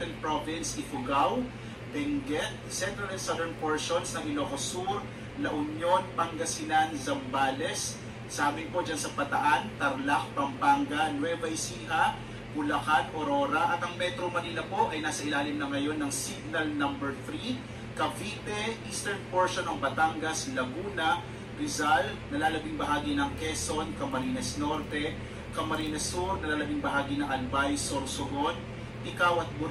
Province, Ifugao, Benguet, central and southern portions ng Ilocos Sur, La Union, Pangasinan, Zambales, sa amin po dyan sa Bataan, Tarlac, Pampanga, Nueva Ecija, Bulacan, Aurora, at ang Metro Manila po ay nasa ilalim na ngayon ng signal number 3, Cavite, eastern portion ng Batangas, Laguna, Rizal, nalalabing bahagi ng Quezon, Camarines Norte, Camarines Sur, nalalabing bahagi ng Albay, Sorsogon, Ticao at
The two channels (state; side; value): identical; both; correlation 1.00